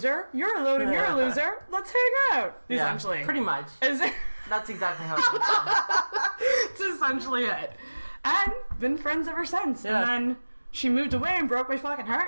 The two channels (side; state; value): both; inverted; correlation -1.00